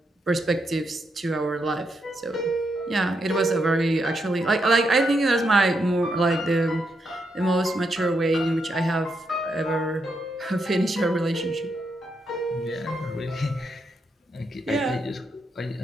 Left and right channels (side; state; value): both; normal; correlation 0.81